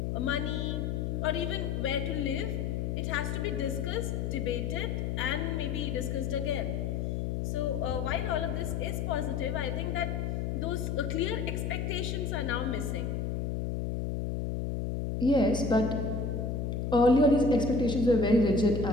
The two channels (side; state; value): left; noise; hum, 1 dB below the sound